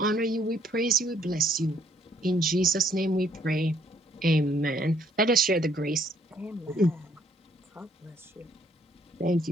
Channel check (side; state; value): both; normal; correlation 0.65